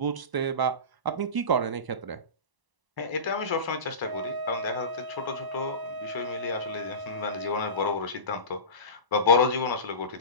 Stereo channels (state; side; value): late; left; 1.0 ms